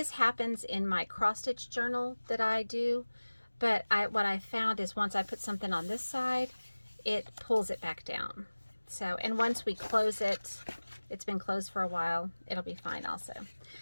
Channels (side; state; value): both; inverted; correlation -1.00